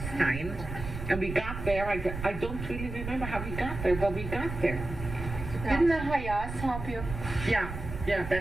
and we got there. I don't really remember how we got there, but we got there. Didn't the Hayas help you? Yeah,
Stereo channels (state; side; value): noise; right; rumble, 8 dB below the sound